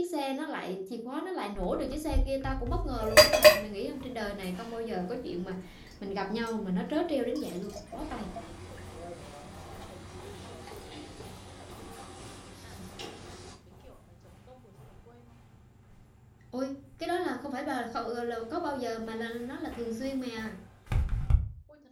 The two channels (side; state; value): both; identical; correlation 1.00